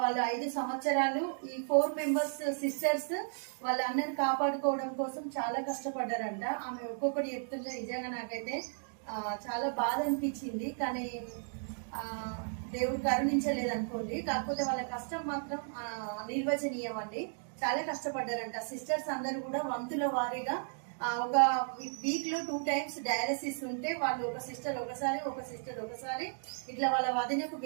వాళ్ళు 5 సంవత్సరాలు ఈ 4 మెంబర్స్ సిస్టర్స్ వాళ్ళ అన్నని కాపాడుకోవడం కోసం చాలా కష్టపడ్డారంట. ఆమె ఒక్కొక్కటి చెప్తుంటే నిజంగా నాకైతే చాలా బాధ అనిపించింది. కానీ దేవుడు కరుణించలేదు అనుకోండి. కాకపోతే వాళ్ళ కష్టం మాత్రం నిర్వచనీయం అండి. చాలా కష్టపడ్డారంట. సిస్టర్స్ అందరూ కూడా వంతుల వారీగా ఒక వీక్ లో 2 టైమ్స్ డయాలసిస్ ఉంటే వాళ్ళు ఒక సిస్టర్ ఒకసారి ఇట్లా వాళ్ళ వదినకు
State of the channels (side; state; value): left; silent; digital silence